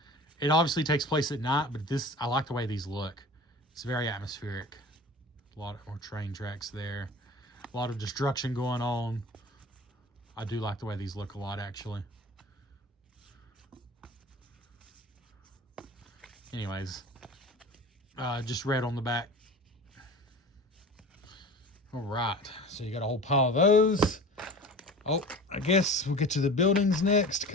It obviously takes place at night, but I like the way these look. It's very atmospheric. A lot more train tracks there. A lot of destruction going on. I do like the way these look a lot, actually. Anyways, just red on the back. All right, so you got a whole pile of those. Oh, I guess we'll get to the buildings next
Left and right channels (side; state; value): both; normal; correlation 0.37